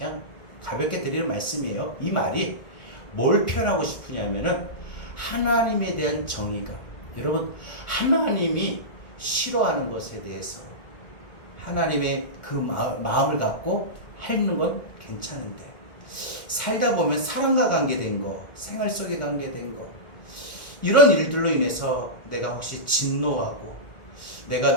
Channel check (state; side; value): late; right; 1.5 ms